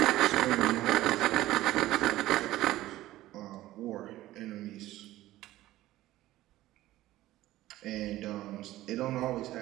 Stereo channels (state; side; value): quieter; left; 15.8 dB